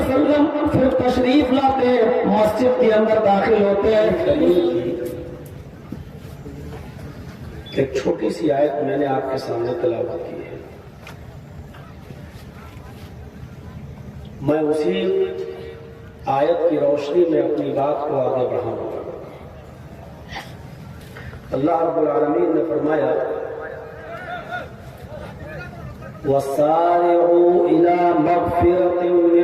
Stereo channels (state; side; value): identical; both; correlation 1.00